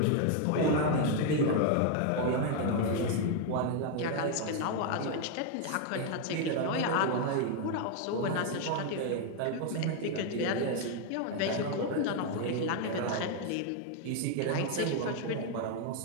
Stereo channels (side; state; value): both; different; correlation 0.01